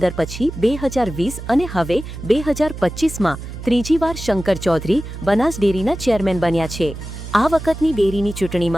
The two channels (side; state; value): right; noise; hum, 10 dB below the sound